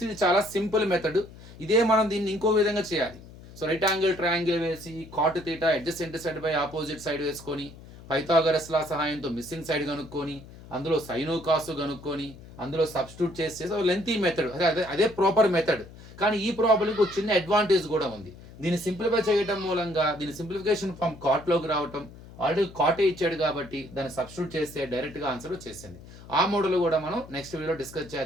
ఇది చాలా సింపుల్ మెథడ్. ఇదే మనం దీన్ని ఇంకో విధంగా చేయాలి. సో రైట్ యాంగిల్ ట్రయాంగిల్ వేసి cot theta adjacent side by opposite side వేసుకొని పైథాగరస్ లా సహాయంతో మిస్సింగ్ సైడ్ కనుక్కొని అందులో సైను కాసు కనుక్కొని అందులో సబ్స్టిట్యూట్ చేసేసి లెంతీ మెథడ్, అదే ప్రాపర్ మెథడ్. కానీ ఈ ప్రాబ్లంకి ఒక చిన్న అడ్వాంటేజ్ కూడా ఉంది. దీన్ని సింప్లిఫై చేయడం మూలంగా దీని సింప్లిఫికేషన్ ఫ్రమ్ కాట్లోకి రావటం, ఆల్రెడీ కాటే ఇచ్చాడు కాబట్టి దాన్ని సబ్స్టిట్యూట్ చేస్తే డైరెక్ట్ గా ఆన్సర్ వచ్చేసింది. ఆ మోడల్ కూడా మనం నెక్స్ట్ వీడియో డిస్కస్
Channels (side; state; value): left; noise; hum, 18 dB below the sound